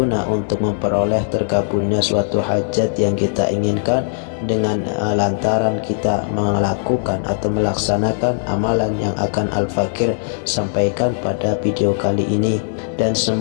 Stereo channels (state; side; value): silent; right; digital silence